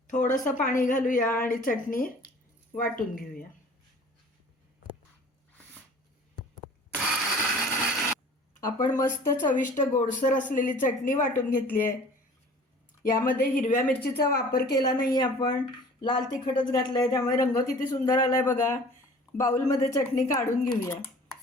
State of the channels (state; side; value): normal; both; correlation 0.47